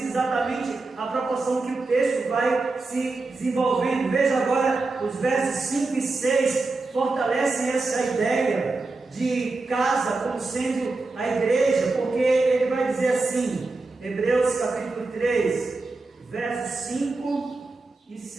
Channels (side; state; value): left; quieter; 3.5 dB